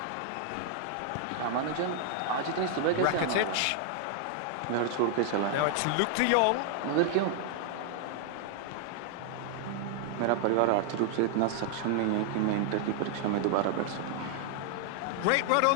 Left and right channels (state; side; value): different; both; correlation 0.00